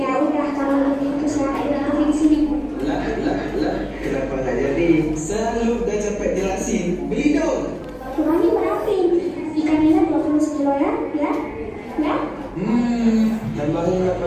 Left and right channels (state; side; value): identical; both; correlation 1.00